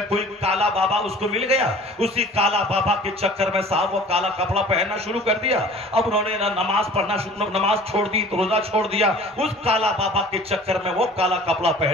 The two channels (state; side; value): normal; both; correlation 0.46